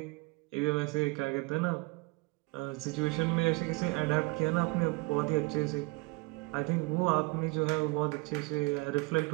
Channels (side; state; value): left; quieter; 26.1 dB